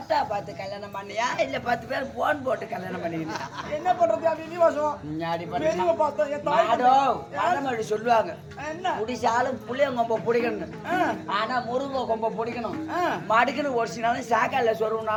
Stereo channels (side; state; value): both; identical; correlation 1.00